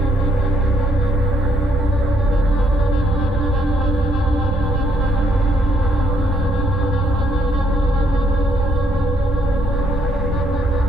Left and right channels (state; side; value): normal; both; correlation 0.71